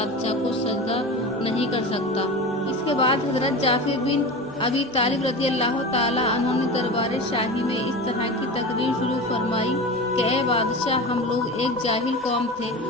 को सजदा नहीं कर सकता। इसके बाद हजरत जाफर बिन अबी तालिब रज़ी अल्लाह ताला अन्हु ने दरबार शाही में इस तरह की तकरीर शुरू फरमाई कि ए बादशाह, हम लोग एक जाहिल कौम थे,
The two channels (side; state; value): both; normal; correlation 0.29